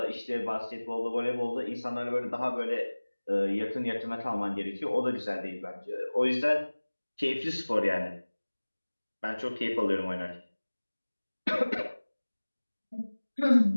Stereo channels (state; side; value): inverted; both; correlation -1.00